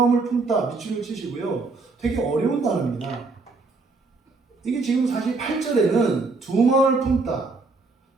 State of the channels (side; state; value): left; quieter; 3.9 dB